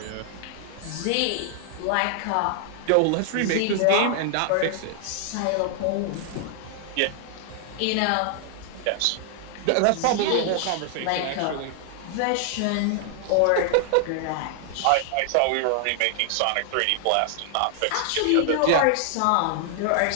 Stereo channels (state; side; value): different; both; correlation 0.00